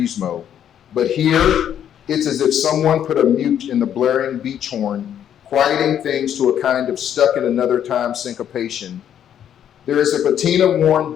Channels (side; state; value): right; quieter; 9.7 dB